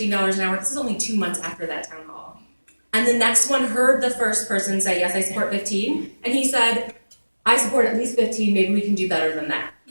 an hour. This is only 2 months after that town hall. And the next one heard the first person say, yes, I support 15. And he said, I support at least 15. Maybe we can do better than that,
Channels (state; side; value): inverted; both; correlation -1.00